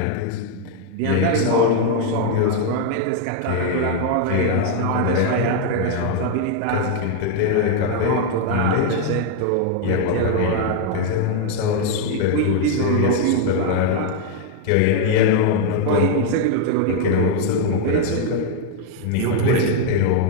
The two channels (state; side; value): different; both; correlation 0.00